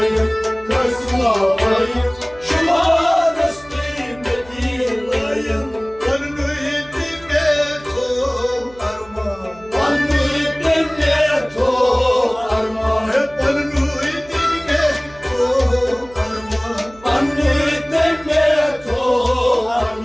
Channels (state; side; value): noise; right; hum, 23 dB below the sound